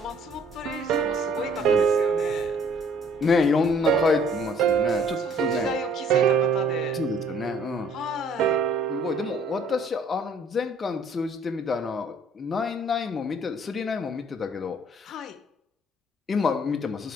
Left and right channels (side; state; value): both; normal; correlation 0.58